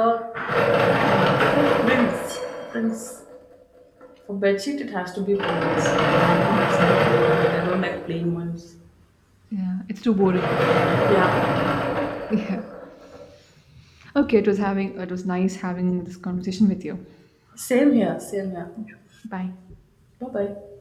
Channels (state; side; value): identical; both; correlation 1.00